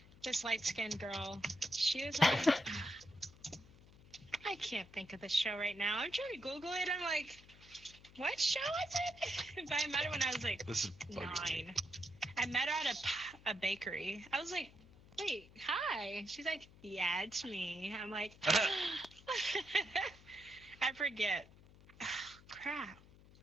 This light-skinned girl. She was on... I can't think of the show right now. I'm trying to Google it. I'm like, what show is it? But I met her when I was like This is 9. I met her at a bakery. I was like, wait, hi. She's like, yeah, it's me. I'm like, I forget. Crap.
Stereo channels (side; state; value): left; noise; hum, 22 dB below the sound